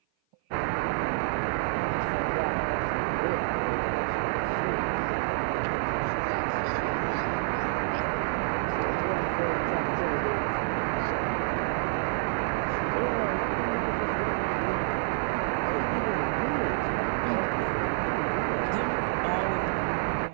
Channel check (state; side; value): silent; left; 55 dB below the other